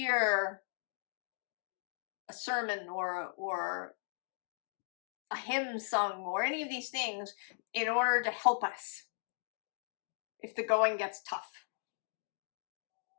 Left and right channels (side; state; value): right; silent; digital silence